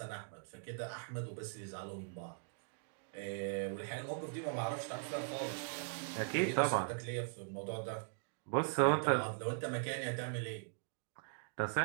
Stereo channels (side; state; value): left; silent; digital silence